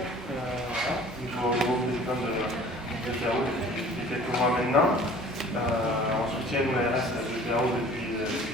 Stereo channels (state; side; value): normal; both; correlation 0.48